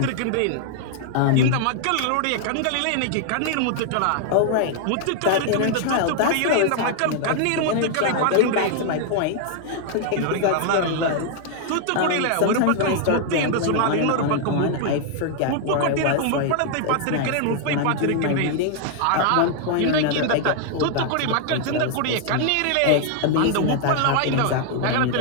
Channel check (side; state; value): both; different; correlation 0.00